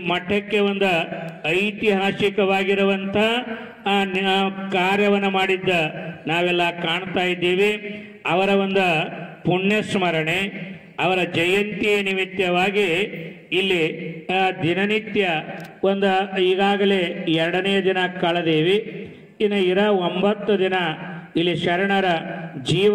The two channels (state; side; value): identical; both; correlation 1.00